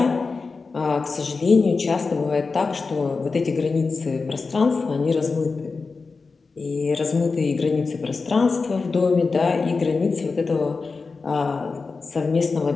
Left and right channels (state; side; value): quieter; right; 4.3 dB